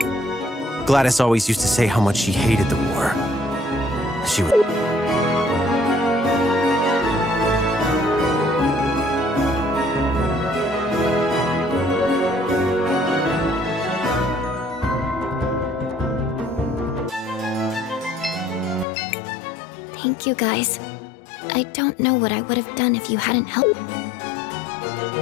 Gladys always used to say how much she hated the war. She would... Thank you, guys. I don't know what I would have done if you hadn't helped.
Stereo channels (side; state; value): right; drops out; at 18.9 s